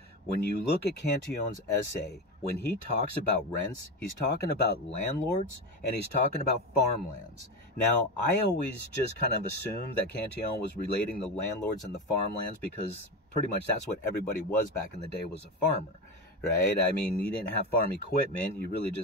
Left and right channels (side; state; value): both; normal; correlation 0.20